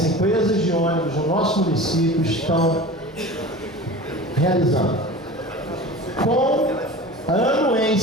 empresas de ônibus no nosso município estão realizando com a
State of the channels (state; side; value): normal; both; correlation 0.36